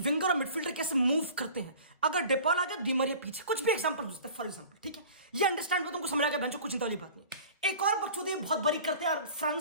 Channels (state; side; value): inverted; both; correlation -0.43